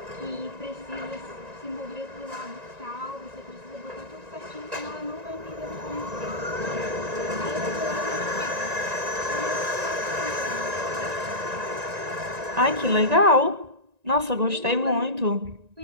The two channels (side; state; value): left; late; 1.9 ms